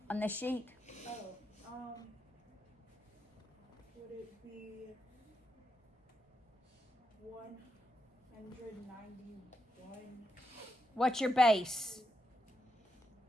on the sheet. would it be 191? What's your base?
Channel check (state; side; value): normal; both; correlation 0.83